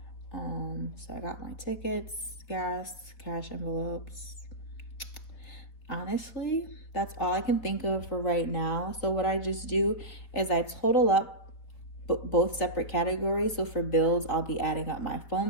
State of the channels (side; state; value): right; late; 3.9 ms